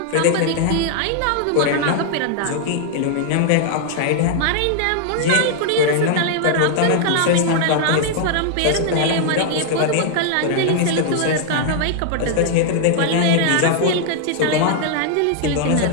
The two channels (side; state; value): both; different; correlation 0.00